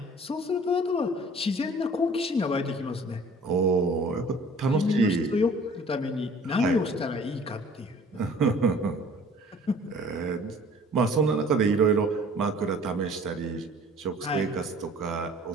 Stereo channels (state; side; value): normal; both; correlation 0.51